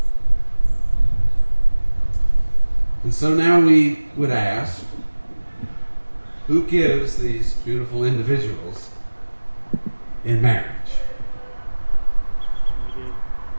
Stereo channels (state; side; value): inverted; both; correlation -1.00